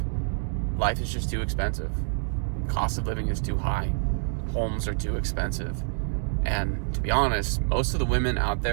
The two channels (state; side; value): silent; left; digital silence